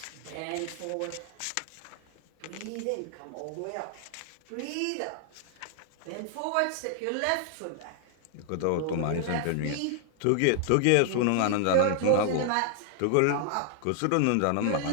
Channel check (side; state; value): both; different; correlation 0.00